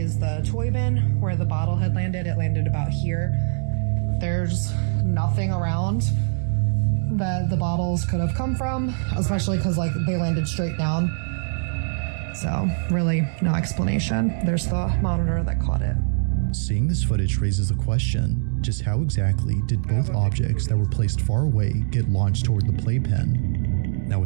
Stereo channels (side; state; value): left; silent; digital silence